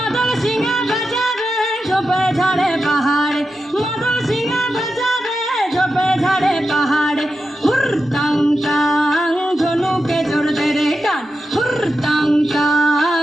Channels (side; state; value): both; normal; correlation 0.89